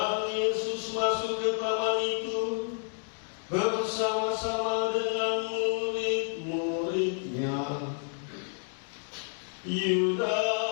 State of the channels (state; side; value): silent; right; 58 dB below the other